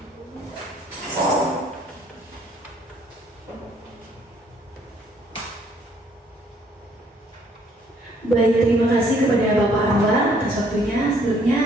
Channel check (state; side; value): normal; both; correlation 0.64